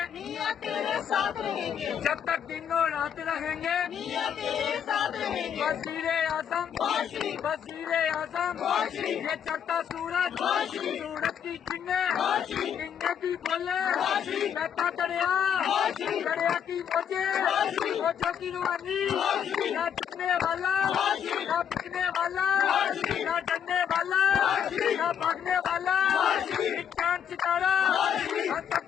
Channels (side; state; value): right; quieter; 8.5 dB